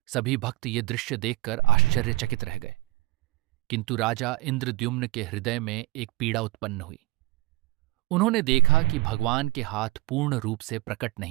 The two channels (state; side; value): quieter; left; 19.9 dB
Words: सभी भक्त ये दृश्य देखकर आश्चर्यचकित रह गए, किंतु राजा इंद्रद्युम्न के हृदय में एक पीड़ा उत्पन्न हुई। उन्होंने देखा कि भगवान के हाथ पूर्ण रूप से प्रकट